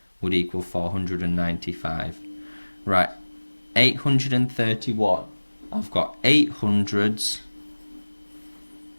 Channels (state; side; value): inverted; both; correlation -1.00